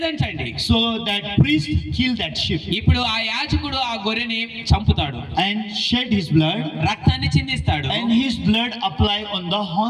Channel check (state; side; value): identical; both; correlation 1.00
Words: So that priest killed that sheep ఇప్పుడు ఆ యాజకుడు ఆ గొర్రెని చంపుతాడు, and shed his blood, రక్తాన్ని చిందిస్తాడు. and his blood apply on the